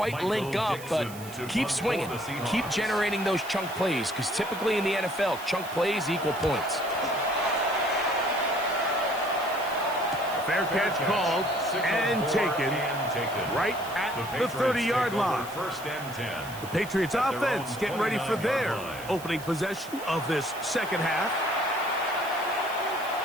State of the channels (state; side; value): noise; right; hiss, 16 dB below the sound